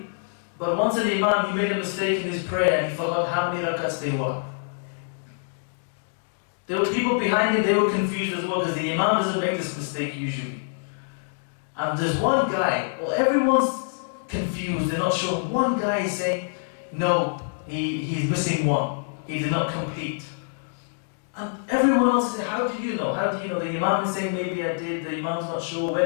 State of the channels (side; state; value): right; silent; digital silence